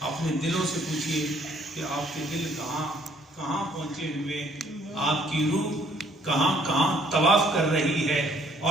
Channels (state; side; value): normal; both; correlation 0.64